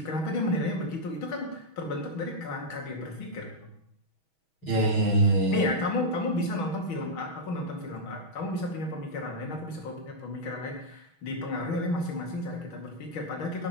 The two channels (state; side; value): late; right; 6.2 ms